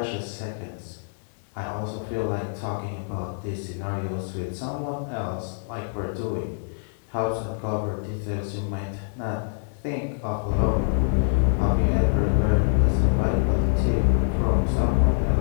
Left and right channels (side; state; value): right; silent; digital silence